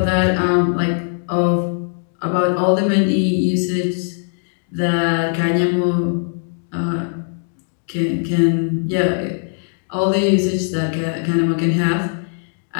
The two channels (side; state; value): right; silent; 65 dB below the other